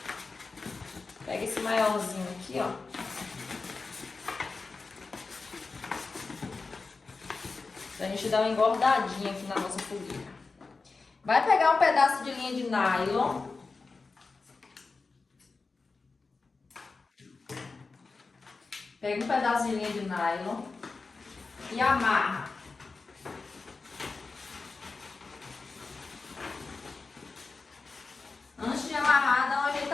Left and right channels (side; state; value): right; quieter; 4.1 dB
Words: pega esse maiorzinho aqui, ó. Pra gente dar uma engordadinha aqui na nossa fogueira. Vai pegar um pedaço de linha de nylon. Pega um pedaço de linha de nylon e amarra. Antes de amarrar, dá uma